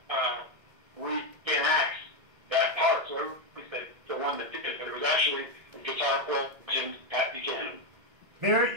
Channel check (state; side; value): late; left; 1.7 ms